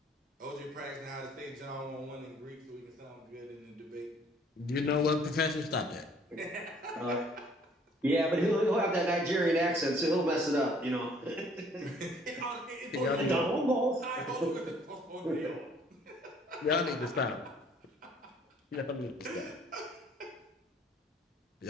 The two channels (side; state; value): both; normal; correlation 0.59